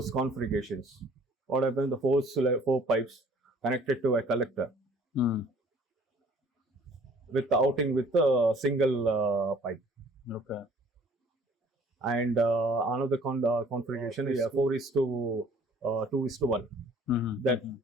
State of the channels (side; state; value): both; normal; correlation 0.54